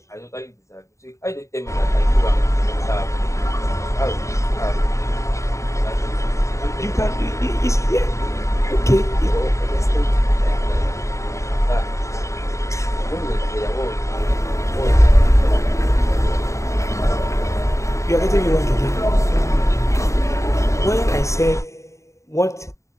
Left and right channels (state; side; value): late; right; 0.15 ms